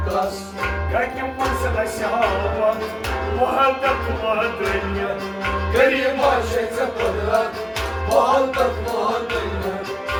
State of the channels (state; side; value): identical; both; correlation 1.00